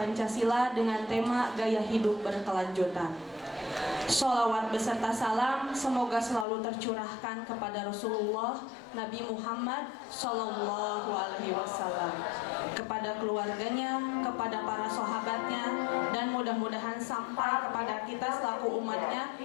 dengan tema gaya hidup berkelanjutan. Sholawat beserta salam semoga selalu tercurahkan kepada Rasulullah Nabi Muhammad Sallallahu Alaihi Wasallam, kepada keluarganya, kepada para sahabatnya, dan mudah-mudahan sampai kepada kita selaku umatnya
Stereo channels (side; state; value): right; drops out; at 6.5 s